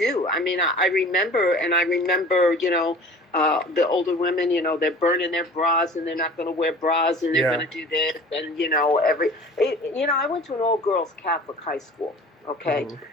mean, I remember, the older women, they're burning their bras and they're not going to wear bras and they're going to do this. And, I went to an all-girls Catholic high school, okay?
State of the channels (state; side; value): normal; both; correlation 0.43